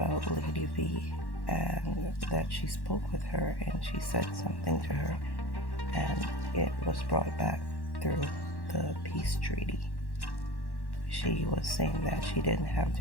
Lady V and that she spoke with her and she said something to her and it was brought back through the peace treaty. She was saying that she didn't have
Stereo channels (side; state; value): right; late; 1.1 ms